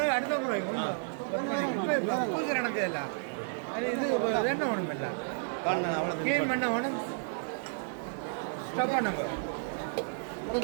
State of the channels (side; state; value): left; silent; digital silence